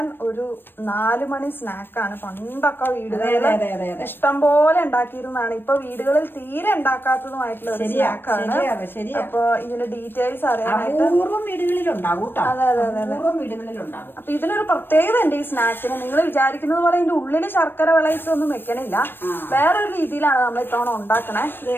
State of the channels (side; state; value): right; late; 0.097 ms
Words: ഒരു 4 മണി സ്നാക്കാണ്. പണ്ടൊക്കെ വീടുകളിൽ ഇഷ്ടം പോലെ ഉണ്ടാക്കിയിരുന്നതാണ്. ഇപ്പൊ വീടുകളിൽ തീരെ ഉണ്ടാക്കാത്തതുമായിട്ടുള്ള ഒരു സ്നാക്കാണ്. അപ്പൊ ഇതിന്റെ ഡീറ്റെയിൽസ് അറിയാനായിട്ട് അതെ അതെ അതെ അപ്പൊ ഇതിനൊരു പ്രത്യേകത ഉണ്ട് ഈ സ്നാക്കിന്. നിങ്ങൾ വിചാരിക്കുന്നത് പോലെ ഇതിന്റെ ഉള്ളില് ശർക്കര വിളയിച്ചൊന്നും വെക്കണില്ല. വേറൊരു രീതിയിലാണ് നമ്മൾ ഇത്തവണ ഉണ്ടാക്കണേ.